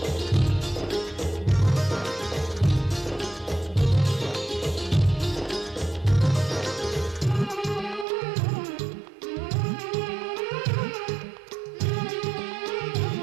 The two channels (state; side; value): drops out; left; at 8.1 s